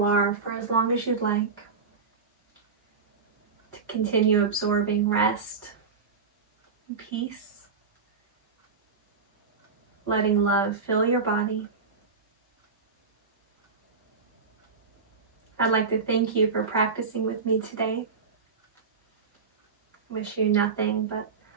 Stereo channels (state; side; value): quieter; left; 5.1 dB